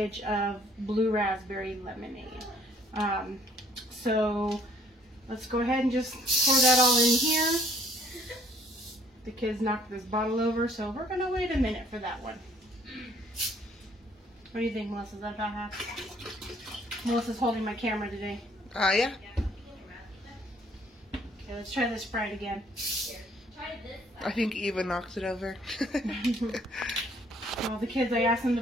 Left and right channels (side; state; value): both; normal; correlation 0.61